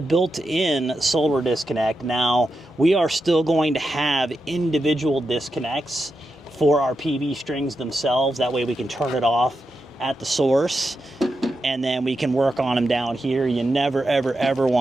built-in solar disconnect. Now, we are still going to have individual disconnects for our PV strings themselves. That way we can turn it off at the source, and then we can work on them down here. You never, ever, ever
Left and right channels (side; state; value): both; normal; correlation 0.87